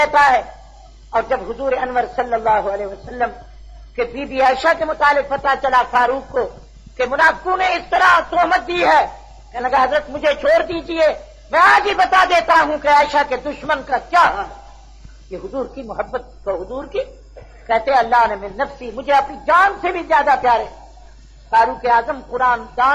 ہے. اور جب حضور انور صلی اللہ علیہ وسلم کہ بی بی عائشہ کے متعلق پتہ چلا فاروق کو کہ منافقوں نے اس طرح تہمت دی ہے، کہنے لگا حضرت مجھے چھوڑ دیجئے، میں آج ہی بتا دیتا ہوں کہ عائشہ کے دشمن کا کیا حال ہے. یہ حضور کی محبت تو حضور کی کہتے اللہ نے من نفسی، مجھے اپنی جان سے بھی زیادہ پیارے. فاروق اعظم قرآن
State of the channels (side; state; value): both; identical; correlation 1.00